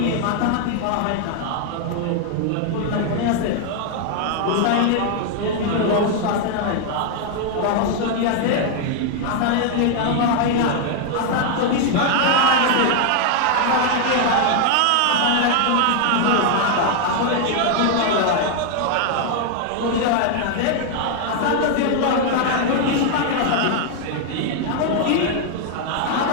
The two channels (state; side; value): different; both; correlation 0.00